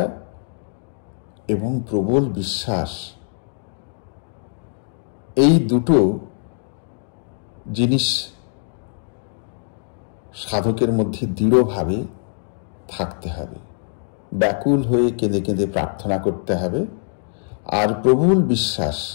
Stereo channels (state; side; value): silent; right; 64 dB below the other